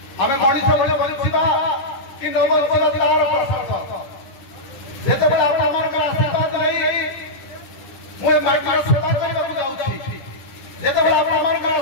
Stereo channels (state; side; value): late; right; 11 ms